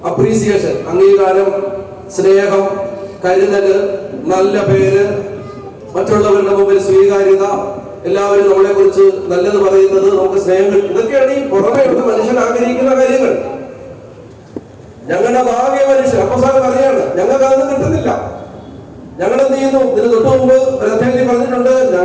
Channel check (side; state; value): both; identical; correlation 1.00